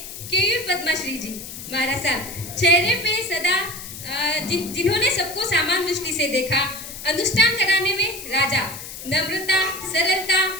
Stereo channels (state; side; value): noise; left; hiss, 11 dB below the sound